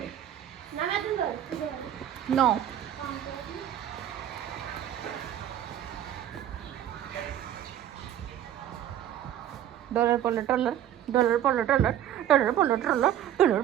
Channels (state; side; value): quieter; left; 11.2 dB